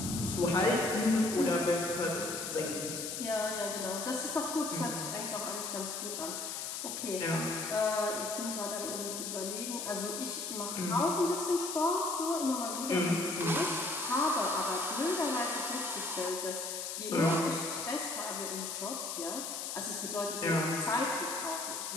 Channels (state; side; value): noise; left; hiss, 5 dB below the sound